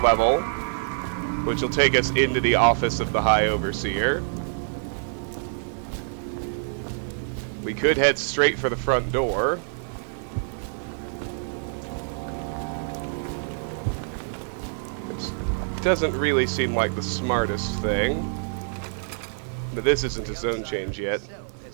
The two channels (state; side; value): silent; left; 56 dB below the other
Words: which will take us into the office of the High Overseer. We could head straight for the front door. Which doesn't really seem like the smartest thing. But this isn't a zone change yet.